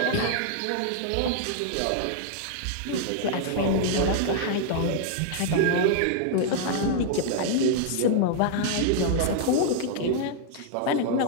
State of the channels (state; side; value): different; both; correlation -0.01